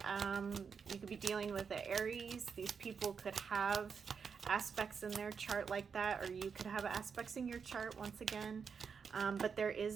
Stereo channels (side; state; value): left; quieter; 6.1 dB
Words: you could be dealing with an Aries. These people could have aspects in their chart like that, or you could have aspects in your chart once again. But there